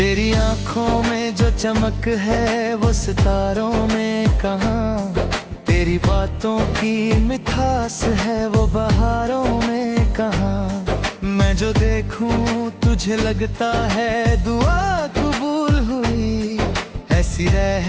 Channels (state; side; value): identical; both; correlation 1.00